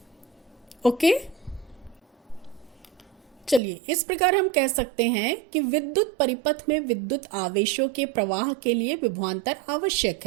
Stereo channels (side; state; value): left; drops out; at 3.6 s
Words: ओके, चलिए इस प्रकार हम कह सकते हैं कि विद्युत परिपथ में विद्युत आवेशों के प्रवाह के लिए विभवांतर आवश्यक